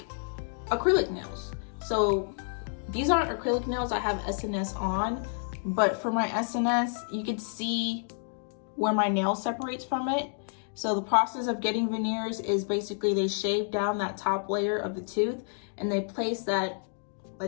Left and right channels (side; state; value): right; silent; digital silence